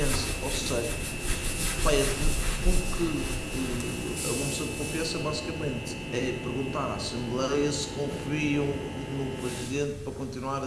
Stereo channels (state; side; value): identical; both; correlation 1.00